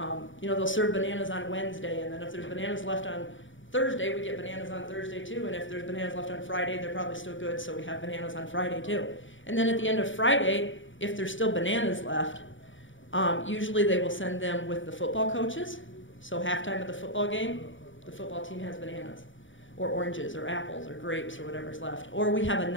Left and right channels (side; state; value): right; late; 0.56 ms